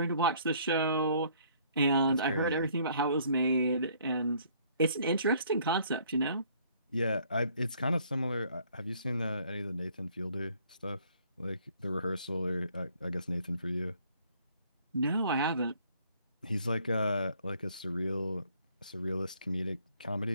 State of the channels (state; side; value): inverted; both; correlation -0.61